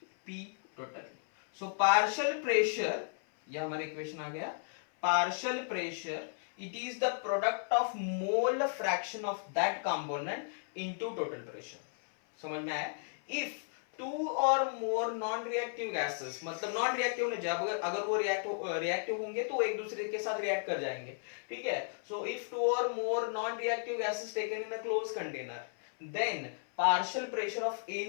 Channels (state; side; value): silent; right; 55 dB below the other